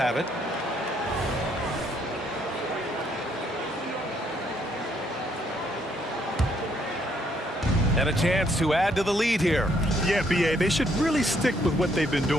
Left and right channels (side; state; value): both; normal; correlation 0.70